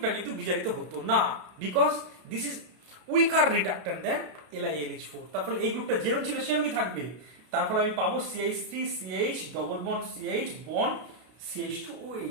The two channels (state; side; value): late; left; 32 ms